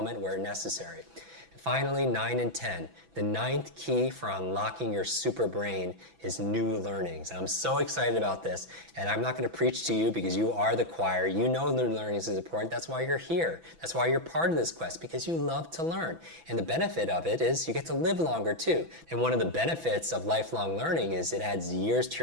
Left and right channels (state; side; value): late; left; 6.0 ms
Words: where necessary. Finally, 9 and 10. The 9th key for unlocking your super brain is new learnings. I'm so excited about this, and I'm not going to preach to you because you are the choir. You know new learnings is important. That's why you're here. That's why you're part of this quest, because you love to learn. And the benefit of it is you get to live longer too. And one of the benefits of lifelong learning is it adds years to